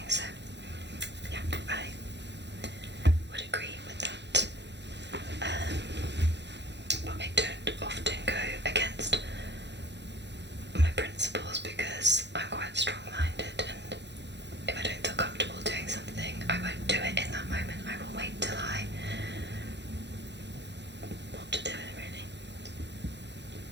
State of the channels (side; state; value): left; late; 0.51 ms